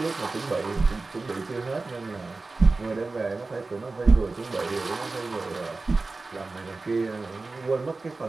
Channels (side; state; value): left; quieter; 3.6 dB